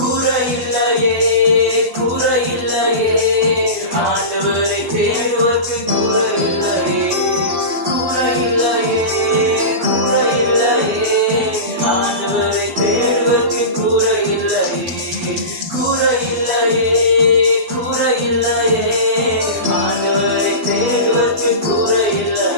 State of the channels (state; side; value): late; left; 12 ms